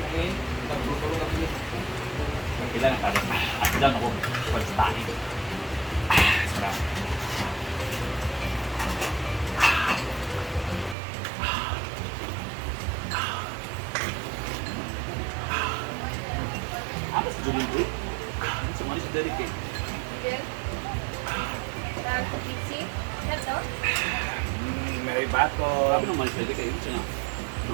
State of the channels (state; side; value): drops out; left; at 11.0 s